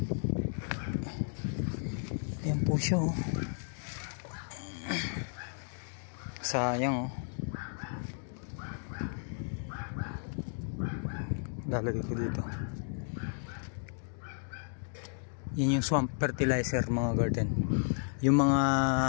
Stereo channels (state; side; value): silent; right; digital silence